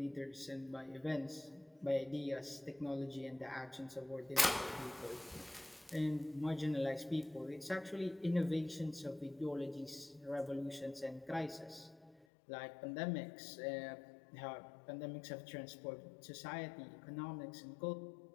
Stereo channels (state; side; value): drops out; right; at 12.2 s